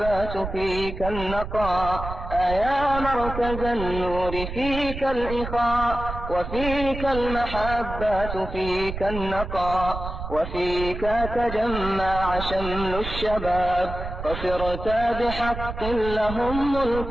فيك النقاء يا مركز النور فيك الإخاء وفيك المحبة فيك النقاء وفيك تجمع شمل الشباب فصرت بحق لهم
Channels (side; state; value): right; noise; rumble, 8 dB below the sound